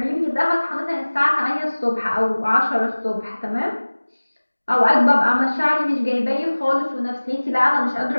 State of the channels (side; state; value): both; inverted; correlation -1.00